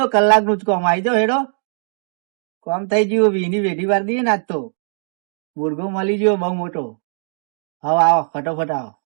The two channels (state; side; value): silent; left; digital silence